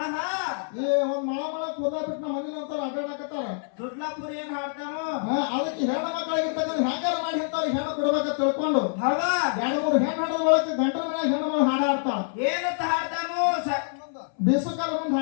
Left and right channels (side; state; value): right; silent; 61 dB below the other